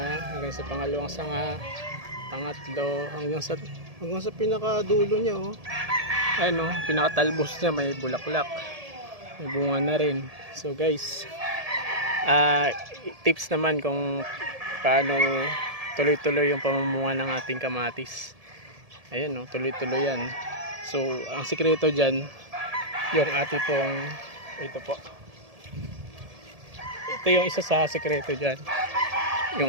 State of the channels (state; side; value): late; left; 1.7 ms